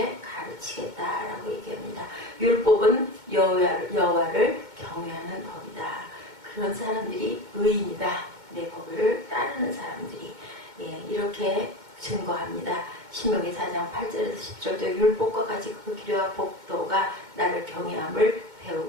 가르치겠다라고 얘기합니다. 율법은 여호와를 경외하는 법이다. 그런 사람들이 의인이다. 내 법을 따르는 사람들이 이렇게 증거합니다. 신명기 4장 8절에서 10절도 율법과 같이 그 기료와 법도가 나를 경외함을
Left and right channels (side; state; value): left; late; 2.2 ms